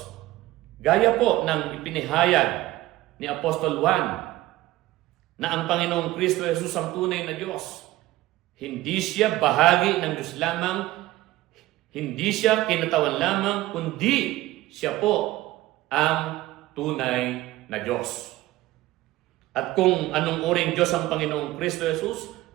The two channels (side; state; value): left; quieter; 17.0 dB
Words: Gaya po ng ipinahayag ni Apostol Juan na ang Panginoong Kristo Jesus ang tunay na Diyos. Hindi siya bahagi ng Diyos lamang, hindi siya kinatawan lamang, kundi siya po ang tunay na Diyos. At kung anong uring Diyos ang Panginoong Kristo Jesus,